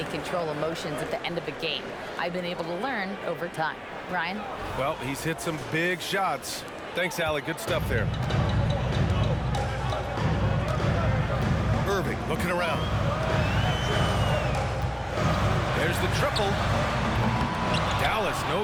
control emotions at the end of a game. I've been able to learn over time. Ryan? Well, he's hit some big shots. Thanks, Allie. Good stuff there. Irving looking around. There's the triple. Dallas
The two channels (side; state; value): both; identical; correlation 1.00